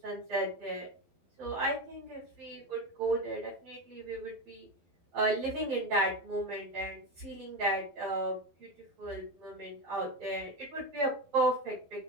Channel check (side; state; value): left; late; 11 ms